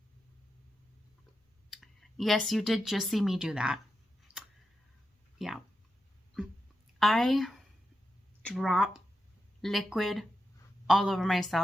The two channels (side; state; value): both; normal; correlation 0.88